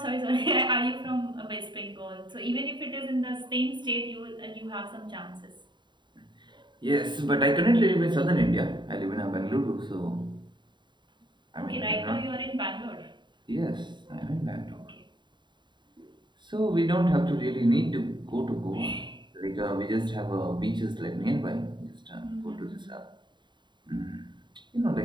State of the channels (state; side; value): late; left; 0.22 ms